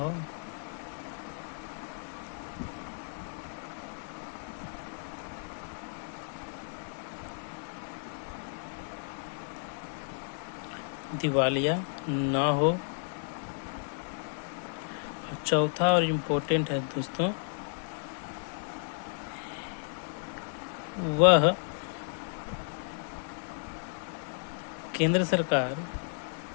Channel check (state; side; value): silent; right; digital silence